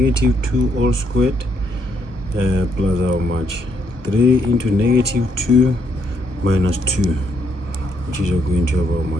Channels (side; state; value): left; late; 1.2 ms